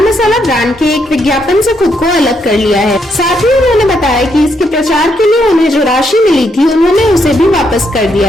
मसाला ब्रांड के एक विज्ञापन से खुद को अलग कर लिया है। साथ ही उन्होंने बताया कि इसके प्रचार के लिए उन्हें जो राशि मिली थी उन्होंने उसे भी वापस कर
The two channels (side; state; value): both; normal; correlation 0.76